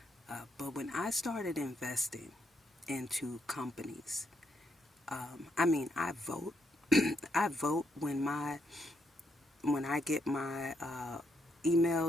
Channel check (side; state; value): both; normal; correlation 0.77